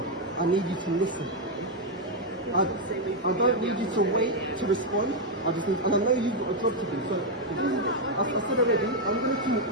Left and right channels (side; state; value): both; normal; correlation 0.01